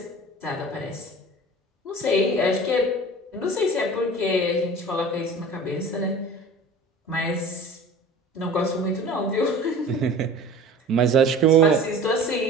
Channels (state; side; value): normal; both; correlation 0.41